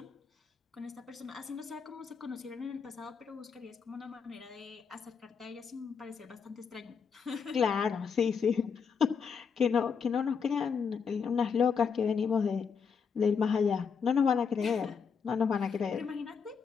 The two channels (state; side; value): quieter; right; 6.2 dB